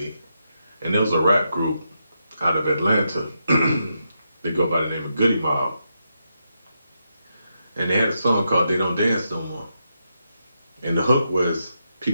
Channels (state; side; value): inverted; both; correlation -0.83